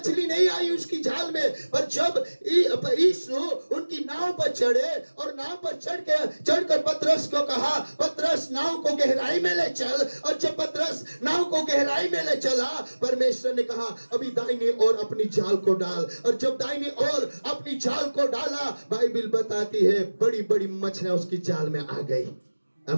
नहीं आई उसकी जाल में। पर जब यीशु उनकी नाव पर चढ़े और नाव पर चढ़कर पतरस को कहा, पतरस नाव को गहराई में ले चल, और जब पतरस नाव को गहराई में ले चला, परमेश्वर ने कहा, अभी दाहिनी ओर अपनी जाल को डाल। और जब दाहिनी ओर अपनी जाल को डाला, बाइबिल बताती है बड़ी बड़ी मछलियां उसकी जाल में आ गई।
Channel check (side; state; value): both; inverted; correlation -1.00